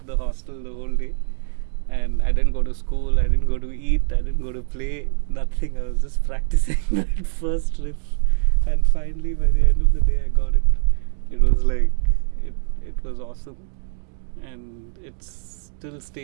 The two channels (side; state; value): left; silent; digital silence